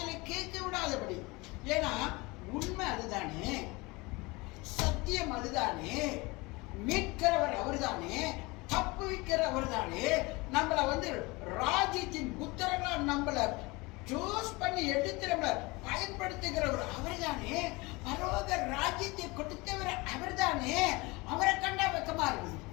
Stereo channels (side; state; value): right; quieter; 24.3 dB